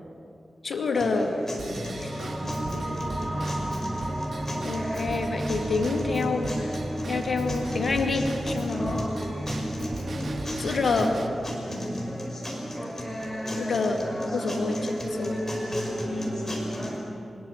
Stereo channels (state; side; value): normal; both; correlation 0.90